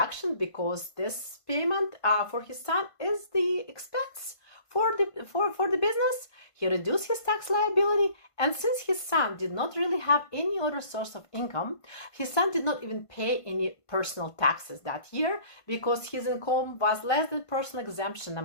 because this payment for his son is the expense for the business. He reduced his tax liability, and since his son did not really have any other source of income, his son did not even pay any personal taxes that year because his income was less than personal exemption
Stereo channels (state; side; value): late; right; 1.5 ms